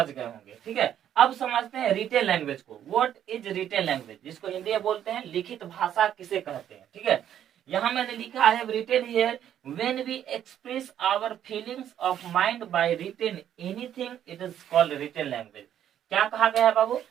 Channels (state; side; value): quieter; left; 10.3 dB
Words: गए होंगे। ठीक है, अब समझते हैं रिटेन लैंग्वेज को। व्हाट इज रिटेन लैंग्वेज, जिसको हिंदी में बोलते हैं लिखित भाषा किसे कहते हैं। ठीक है, यहाँ मैंने लिखा, I have written here, when we express our feelings of mind by written anything it is called written language. क्या कहा गया है बाबू,